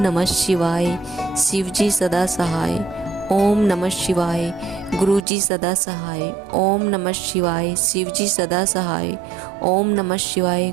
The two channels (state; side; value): drops out; left; at 5.2 s